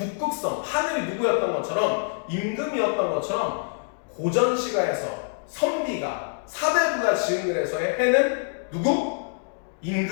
하늘이 누구였던 것처럼 임금이었던 것처럼 고전시가에서 선비가 사대부가 지은 글에서의 해는 누구?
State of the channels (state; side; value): silent; right; digital silence